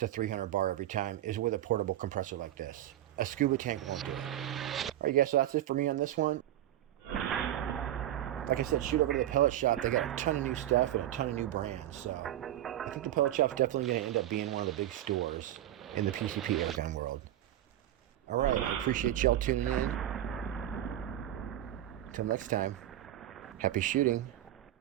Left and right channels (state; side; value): quieter; left; 12.9 dB